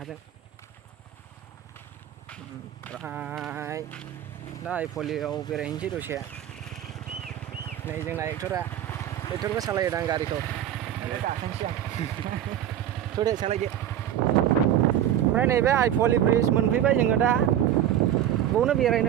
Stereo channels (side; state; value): left; quieter; 11.1 dB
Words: ओमफ्राय दा आइफवालियाव बेरायहैनोसै दसे नै जोंना एक्टरबो सालायदां गारिखौ गाखोनोसै आं थ'दे सालायदो ओमफ्राय नैबे आइफवालि ब्रिज मोनफैबाय जोङो दा बावनो